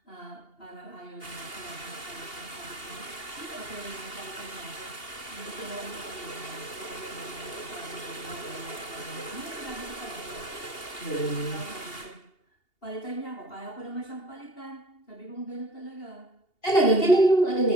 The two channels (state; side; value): late; right; 2.8 ms